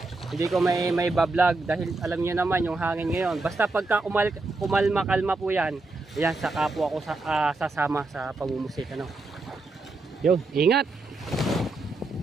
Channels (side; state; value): left; quieter; 3.3 dB